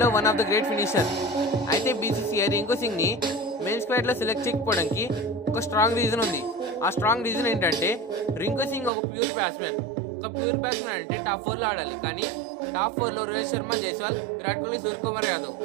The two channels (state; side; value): drops out; left; at 8.9 s